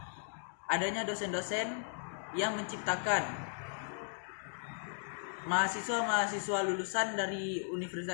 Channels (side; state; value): right; silent; digital silence